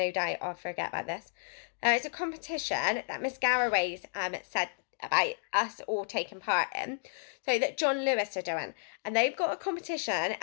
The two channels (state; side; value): silent; right; digital silence